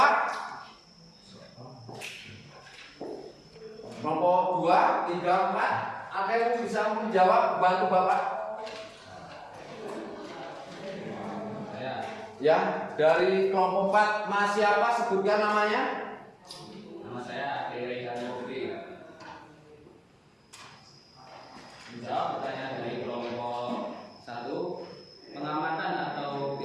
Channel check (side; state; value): both; identical; correlation 1.00